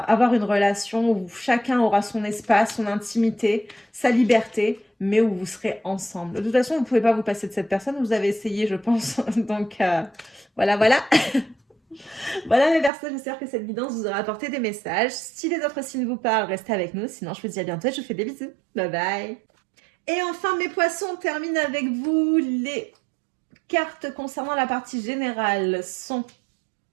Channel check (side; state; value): left; drops out; at 12.9 s